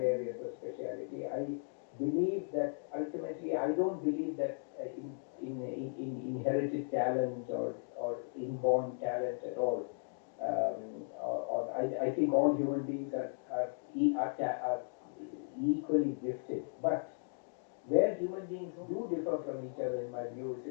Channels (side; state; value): right; silent; digital silence